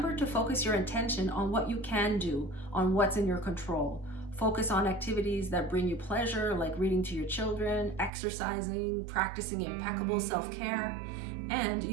to focus your attention on what you can do, on what's in your control. Focus on activities that bring you pleasure, like reading to your children, exercising, practicing impeccable self-care, and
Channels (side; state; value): left; drops out; at 8.1 s